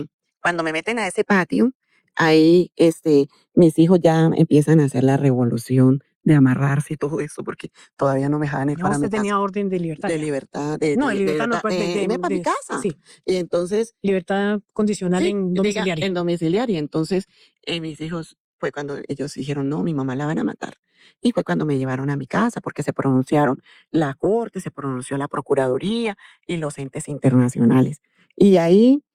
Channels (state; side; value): identical; both; correlation 1.00